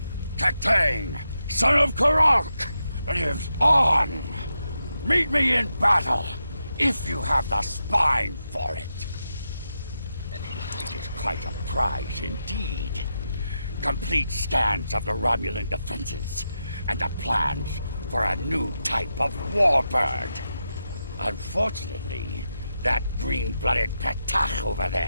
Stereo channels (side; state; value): both; inverted; correlation -0.86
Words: Katang, son of Karok, lives on. Meet me in battle, if you have the spine for it. It is quite a prize indeed. Complete scans of the Romulan defenses, and the plans for a new type of warbird. Unfortunately, that green-blooded Petach over